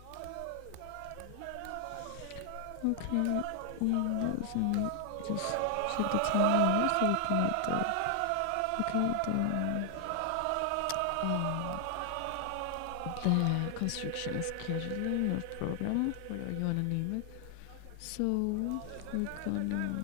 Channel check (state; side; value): different; both; correlation 0.00